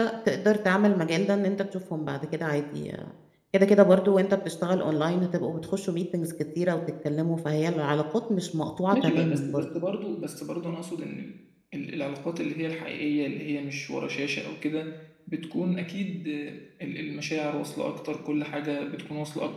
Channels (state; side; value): identical; both; correlation 1.00